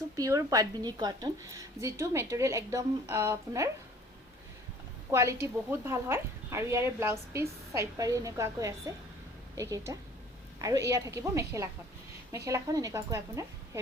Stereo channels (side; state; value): both; normal; correlation 0.52